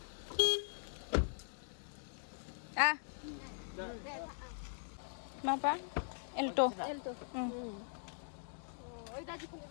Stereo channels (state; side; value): silent; right; digital silence